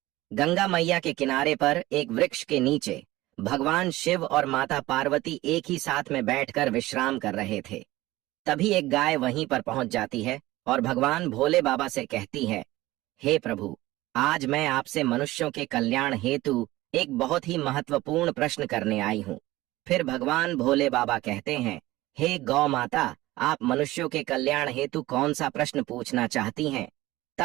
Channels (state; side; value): quieter; left; 17.9 dB